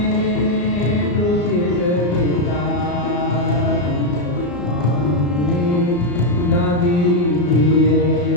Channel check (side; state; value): right; late; 34 ms